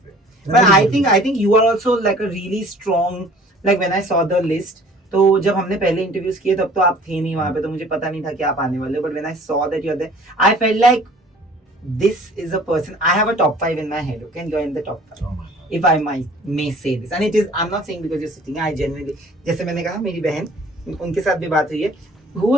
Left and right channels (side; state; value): both; normal; correlation 0.51